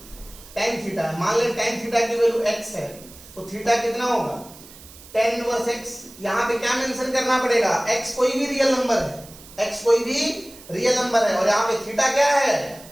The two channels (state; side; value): noise; right; hiss, 20 dB below the sound